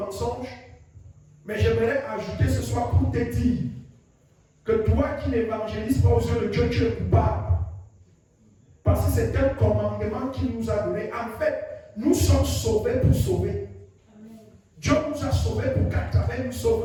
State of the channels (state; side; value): identical; both; correlation 1.00